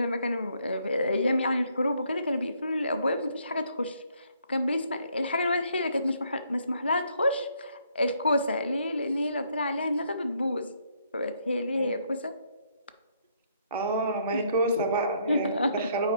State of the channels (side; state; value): both; inverted; correlation -0.70